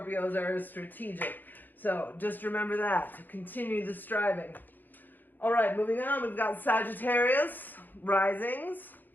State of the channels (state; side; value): late; right; 0.088 ms